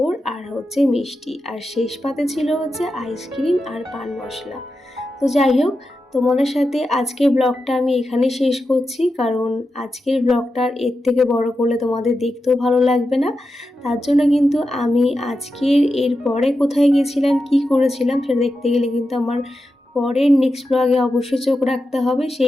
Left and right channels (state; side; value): normal; both; correlation 0.90